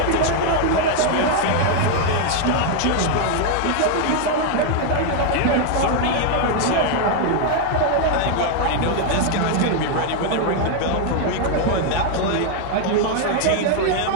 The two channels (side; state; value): both; different; correlation 0.00